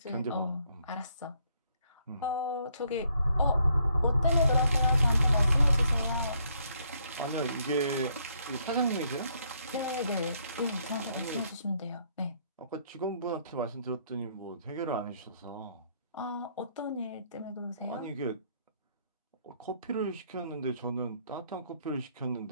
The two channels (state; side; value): inverted; both; correlation -0.70